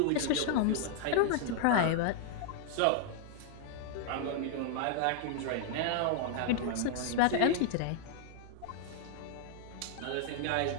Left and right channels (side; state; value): both; different; correlation -0.01